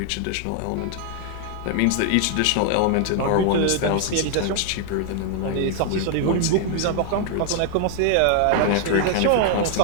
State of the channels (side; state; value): both; different; correlation 0.00